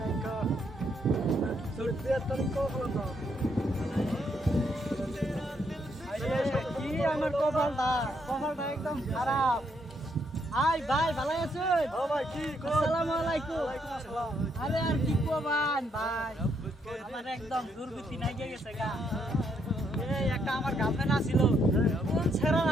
একটা সুরতিয়া তারিখ কখন দাও কি আমার কপালটা একদম খারাপ। আই ভাই ভালো আছেন? ও ভাই কি আসসালামু আলাইকুম। ওয়ালাইকুম আসসালাম আরে আর কি কবান ভাই, আমার একদম দুর্গতি নাই গেছে গা। এই একটা আমার গার্লফ্রেন্ড আছিল, কোন ছেড়া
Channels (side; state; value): both; normal; correlation 0.74